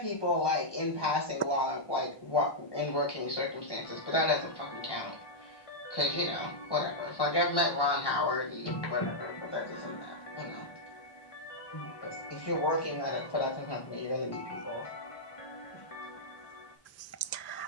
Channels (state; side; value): late; right; 1.2 ms